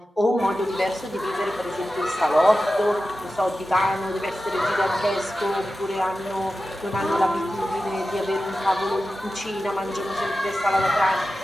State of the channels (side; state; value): both; normal; correlation 0.93